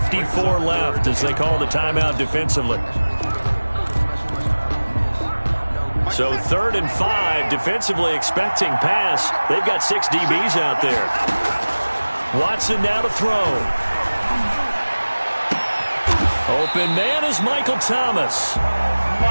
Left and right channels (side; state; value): both; inverted; correlation -1.00